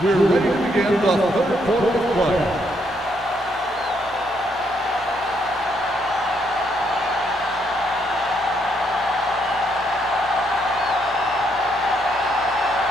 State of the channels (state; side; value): normal; both; correlation 0.74